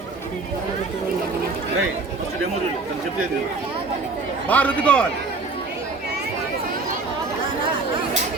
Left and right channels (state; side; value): quieter; left; 3.7 dB